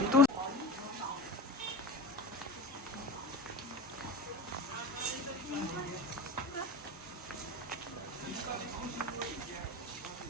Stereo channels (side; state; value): both; normal; correlation 0.30